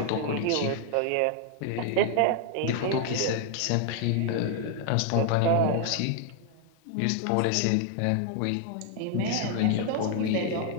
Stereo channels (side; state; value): both; different; correlation 0.00